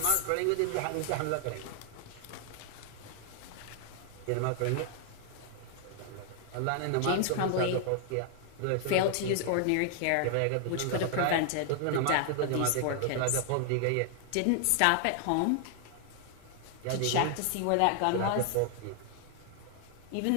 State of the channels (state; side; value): different; both; correlation 0.00